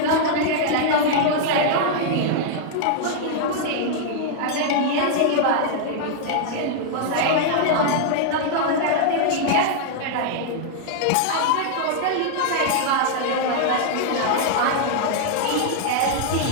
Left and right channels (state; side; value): different; both; correlation 0.00